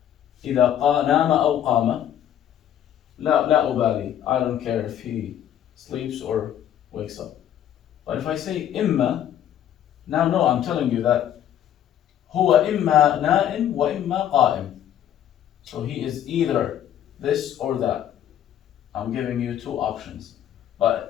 إذا نام أو قام, لا أبالي, I don't care if he sleeps or wakes up. But if I say إما, now no, I'm telling you that هو إما نائم وإما قائم. So he is either this or that. I'm giving you two options.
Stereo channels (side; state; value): right; quieter; 10.6 dB